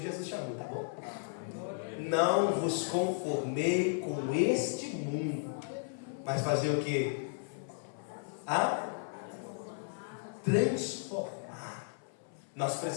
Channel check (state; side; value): silent; right; 55 dB below the other